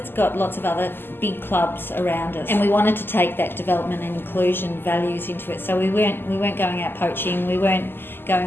got lots of other big clubs around us, and we wanted to take that development and inclusion values into it. So we weren't going out poaching. We weren't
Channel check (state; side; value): late; right; 0.10 ms